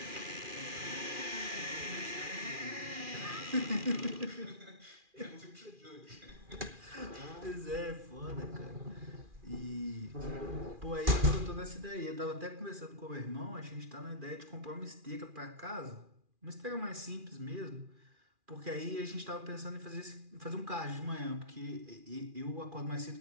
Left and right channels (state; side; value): late; left; 2.4 ms